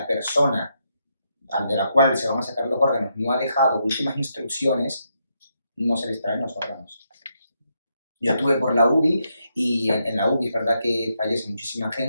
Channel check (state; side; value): inverted; both; correlation -0.80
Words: persona de la cual se van a sacar los órganos no ha dejado últimas instrucciones, no se les traen los órganos. Yo estuve por la UBI y en la UBI es verdad que fallece muchísima